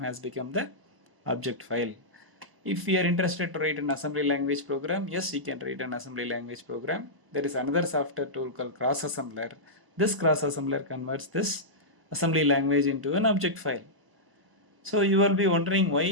become the object file. If we are interested to write an assembly language program, yes, we can write an assembly language program. There is another software tool called Cross Assembler. This Cross Assembler converts this assembly language into an object file. So you will be wondering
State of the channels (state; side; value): late; left; 1.0 ms